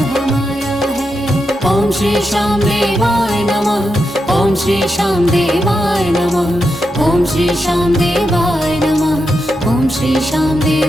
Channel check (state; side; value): normal; both; correlation 0.86